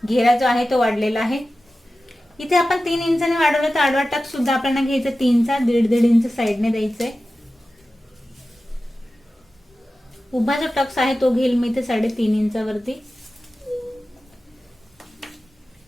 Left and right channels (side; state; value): both; normal; correlation 0.94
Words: घेरा जो आहे तो वाढलेला आहे. इथे आपण 3 इंचाने वाढवलं, तर आडवा टक्स सुद्धा आपल्याला घ्यायचं 3चा. 1.5 इंच साईडने द्यायचंय. उभा जो टक्स आहे तो घेईल मी ते 3.5 इंचावरती.